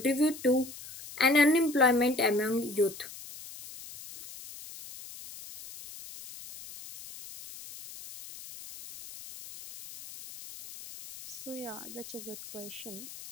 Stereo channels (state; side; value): noise; left; hiss, 15 dB below the sound